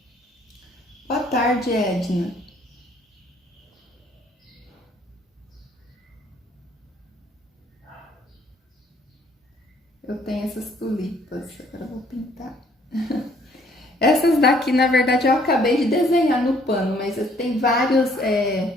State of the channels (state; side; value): normal; both; correlation 0.62